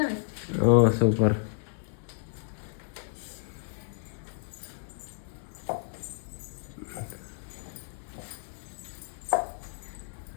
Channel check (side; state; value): right; silent; 57 dB below the other